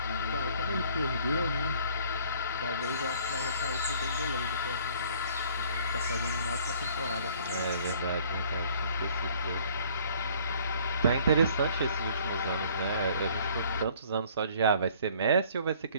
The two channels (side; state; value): both; inverted; correlation -0.56